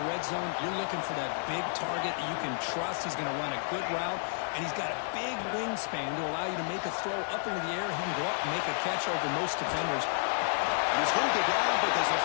red zone, you're looking for that big target that you can trust. He's going to run a good route, and he's got a big wingspan to allow you to make a throw up into the air. He can go up and make a catch over most defenders. And he's going to go down, but there's a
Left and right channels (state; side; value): silent; right; digital silence